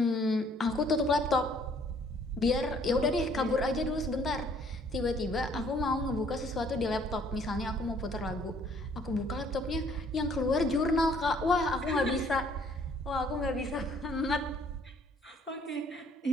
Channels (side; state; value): both; normal; correlation 0.61